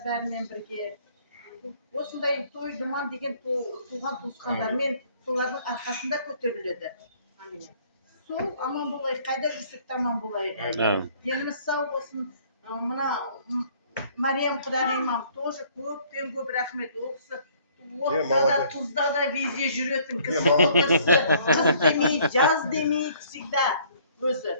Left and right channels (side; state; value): both; inverted; correlation -0.59